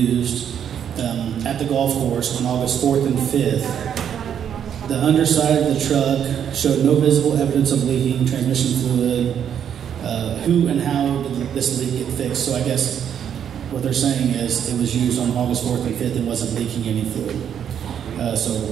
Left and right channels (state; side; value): quieter; left; 8.8 dB